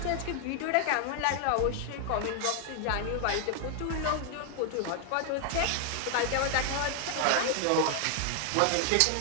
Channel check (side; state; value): both; different; correlation 0.00